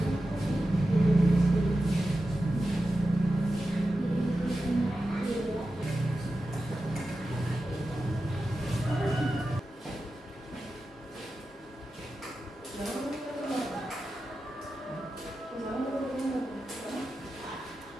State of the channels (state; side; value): normal; both; correlation 0.92